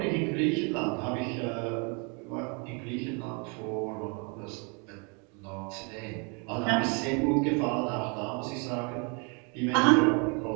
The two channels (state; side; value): quieter; left; 33.9 dB